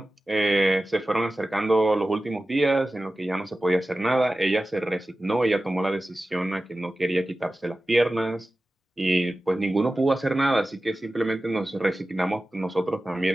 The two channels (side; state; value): both; normal; correlation 0.95